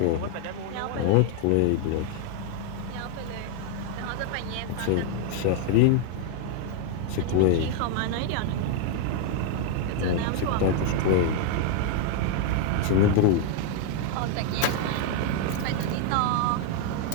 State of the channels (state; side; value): different; both; correlation 0.00